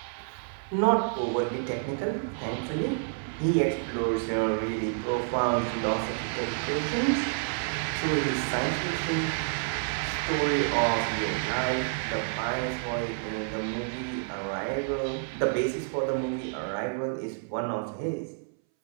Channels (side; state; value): left; silent; 59 dB below the other